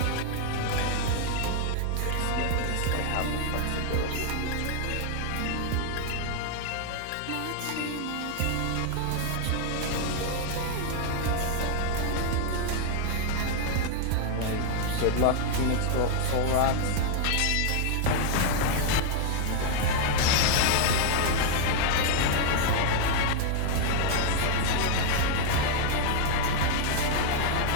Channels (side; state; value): both; different; correlation 0.00